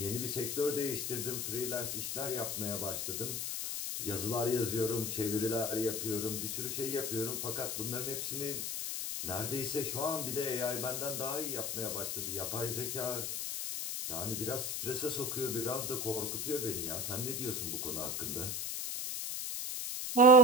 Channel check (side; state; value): left; noise; hiss, 2 dB below the sound